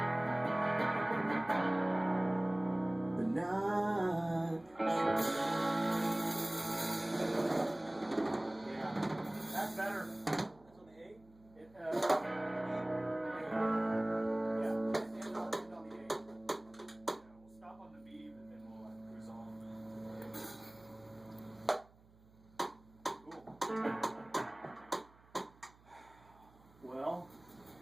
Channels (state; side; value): noise; right; hum, 27 dB below the sound